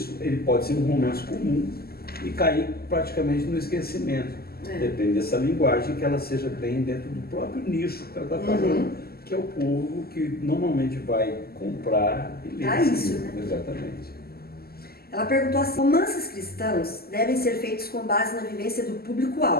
ele pode ser um romance comum e cair praticamente no esquecimento. Depende dessa linguagem, que ela seja bem dentro do próprio nicho que ela está falando, que é o povo que normalmente vai comprar e ler isso, né? Exatamente. Ela perguntou assim: romances cristãos devem ser feitos com base na vivência do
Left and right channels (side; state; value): right; late; 0.45 ms